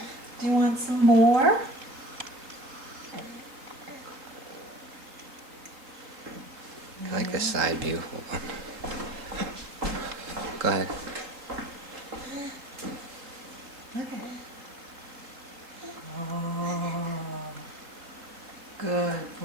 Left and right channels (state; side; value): late; left; 3.7 ms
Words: Do you want some more? I like the side view. Hold on. Go ahead. Look at it. Oh, good